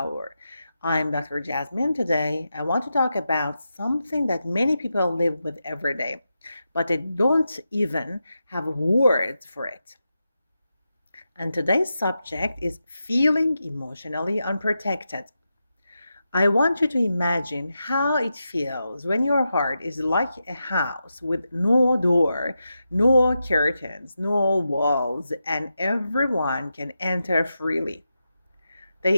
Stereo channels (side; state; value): both; inverted; correlation -0.88